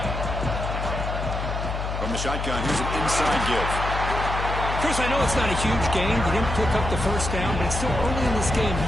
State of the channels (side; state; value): left; noise; hum, 4 dB below the sound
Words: Shotgun, here's an inside give. Chris, I know it's not a huge gain. You didn't pick up the first down, but it's still early in this game.